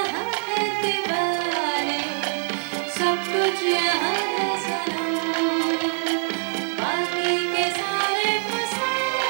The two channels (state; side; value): silent; left; digital silence